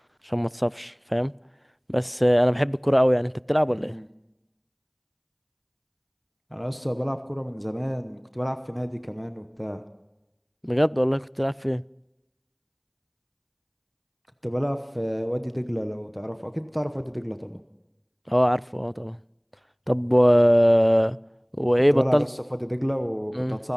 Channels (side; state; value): both; identical; correlation 1.00